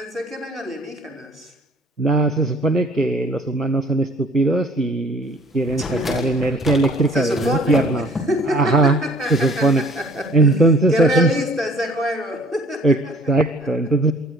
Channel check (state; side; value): normal; both; correlation 0.54